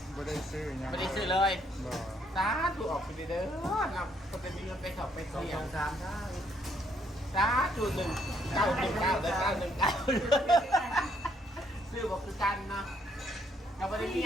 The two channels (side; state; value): both; normal; correlation 0.69